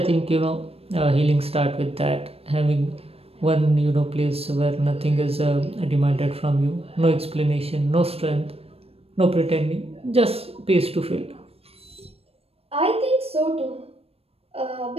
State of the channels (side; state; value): left; late; 0.28 ms